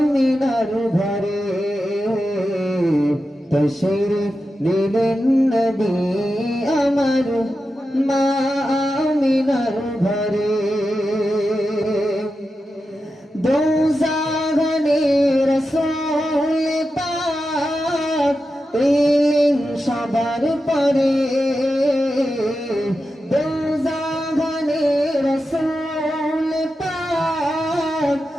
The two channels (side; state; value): both; normal; correlation 0.90